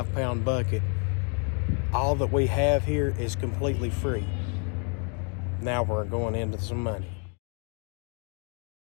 bucket, all that we have here is completely free. Now we're going into some money.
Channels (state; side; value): quieter; right; 38.2 dB